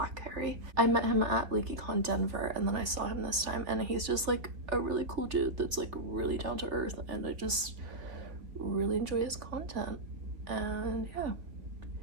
Harry. I met him at LeakyCon Denver, and then I saw him this time, and he's just like a really cool dude that's like really down to earth, and I just really enjoy his content. And yeah,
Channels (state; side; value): late; left; 3.2 ms